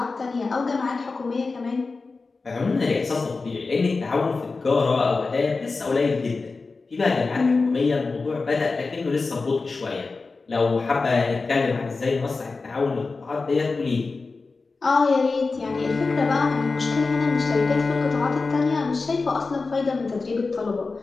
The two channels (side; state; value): right; quieter; 4.0 dB